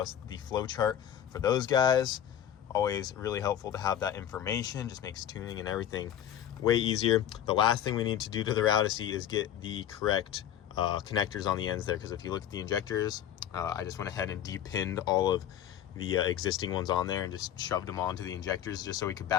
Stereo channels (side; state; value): right; quieter; 10.5 dB